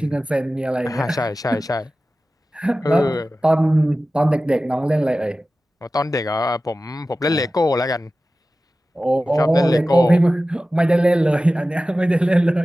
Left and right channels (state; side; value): normal; both; correlation 0.95